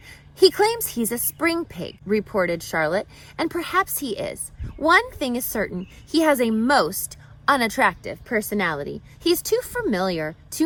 "He claims he's a spring pig," reported Charlotte, "and perhaps he is. One thing is certain, he has a most unattractive personality. He's too familiar,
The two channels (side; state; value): both; identical; correlation 1.00